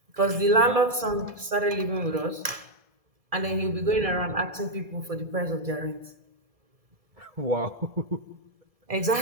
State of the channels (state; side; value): late; left; 2.4 ms